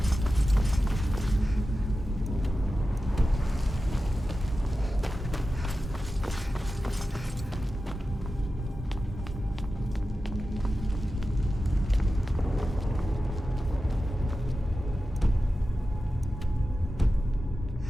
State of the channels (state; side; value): normal; both; correlation 0.93